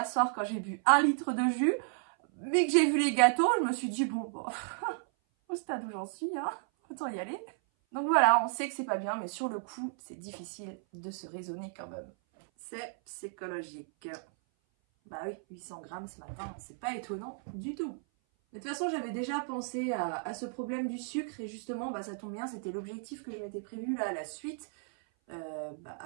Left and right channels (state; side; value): silent; left; 55 dB below the other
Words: soir quand j'ai bu 1 litre de jus, mais que j'ai vu les gâteaux, je me suis dit bon, au stade où j'en suis, hein, autant y aller. Donc voilà, on sait que c'est pas bien, mais sur le coup, c'est difficile de se raisonner quand même. C'est psychologique. Bah oui, 800 grammes ce matin, c'est pas étonnant du tout. De toute façon, j'avais déjà pensé à ce problème du sucre et justement, bah, ça tombe bien, c'était l'objectif que je m'étais prévu là à la suite,